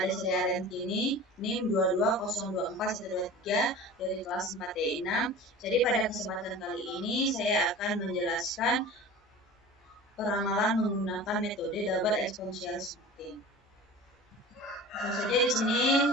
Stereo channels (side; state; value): both; normal; correlation 0.37